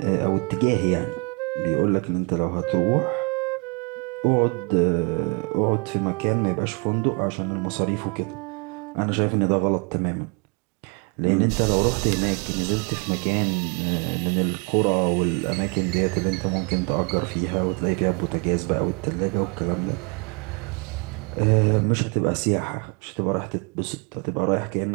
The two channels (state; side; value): quieter; left; 33.1 dB